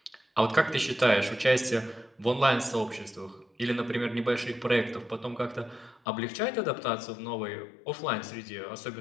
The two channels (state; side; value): drops out; right; at 6.0 s